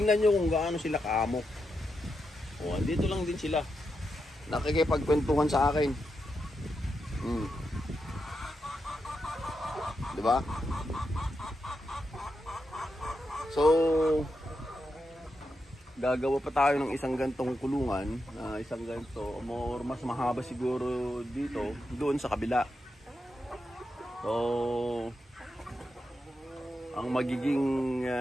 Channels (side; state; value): both; normal; correlation 0.86